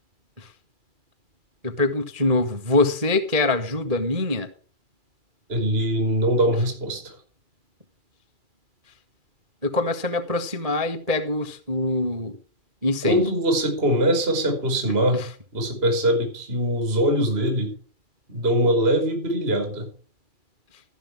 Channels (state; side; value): late; left; 2.3 ms